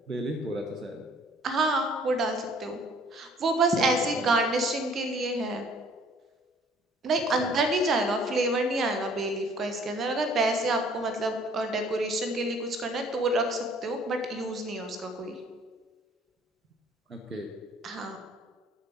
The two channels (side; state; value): both; normal; correlation 0.57